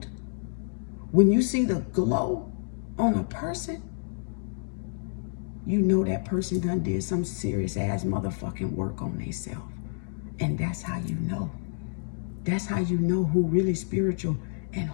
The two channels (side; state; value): right; silent; digital silence